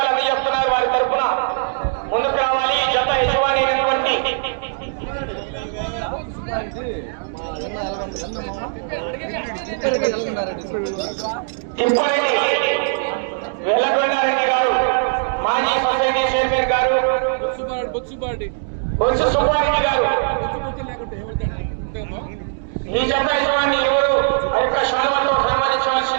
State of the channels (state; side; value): silent; left; digital silence